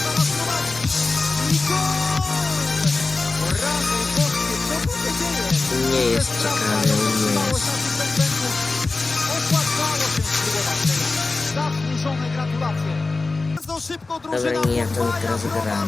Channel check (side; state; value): right; quieter; 3.6 dB